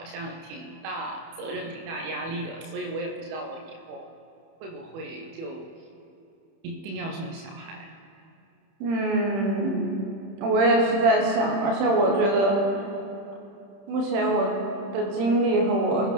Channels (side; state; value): left; late; 31 ms